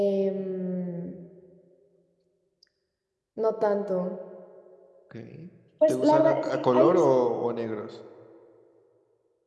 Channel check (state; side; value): identical; both; correlation 1.00